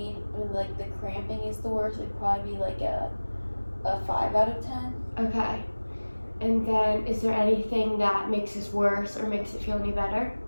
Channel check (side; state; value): both; inverted; correlation -1.00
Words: when like the cramping is the worst, it'd probably be like a 5 out of 10. Okay. And then is there anything that makes this worse or makes it feel any better?